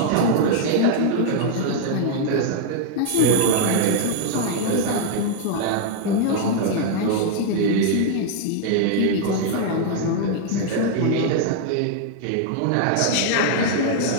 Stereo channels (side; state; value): both; different; correlation 0.00